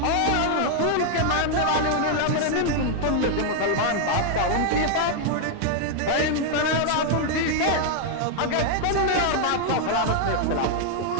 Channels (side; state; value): both; different; correlation 0.00